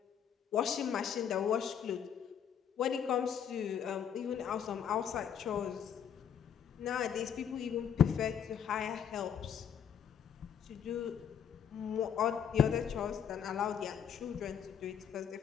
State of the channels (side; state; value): right; quieter; 8.2 dB